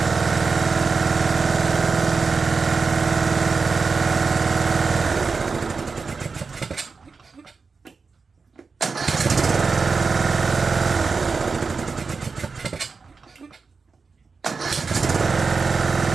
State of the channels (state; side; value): quieter; left; 4.7 dB